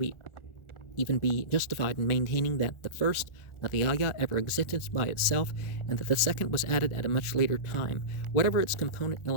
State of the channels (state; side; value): late; right; 1.4 ms